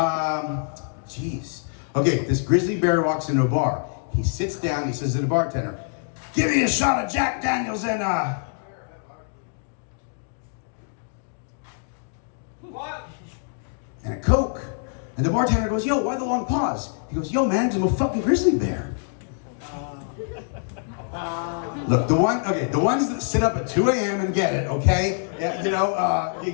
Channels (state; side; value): silent; right; digital silence